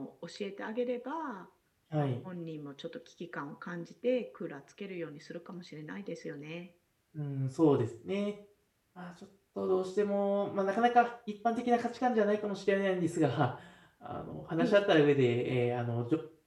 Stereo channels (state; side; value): identical; both; correlation 1.00